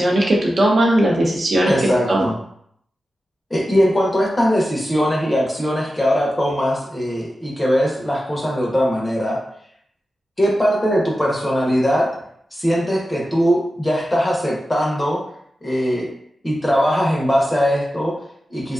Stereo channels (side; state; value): both; normal; correlation 0.92